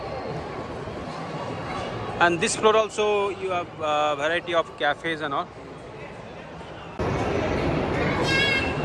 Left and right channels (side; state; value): both; identical; correlation 1.00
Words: And this floor also you have a variety of cafes and all.